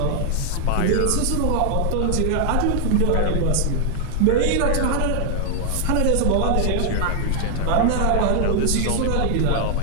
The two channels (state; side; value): different; both; correlation 0.00